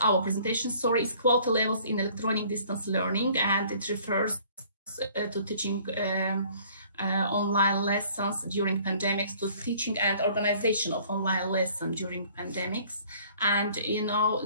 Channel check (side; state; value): both; inverted; correlation -0.55